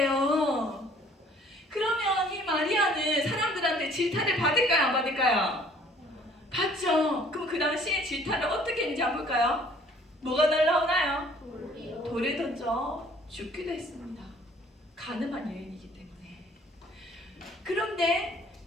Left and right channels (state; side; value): normal; both; correlation 0.56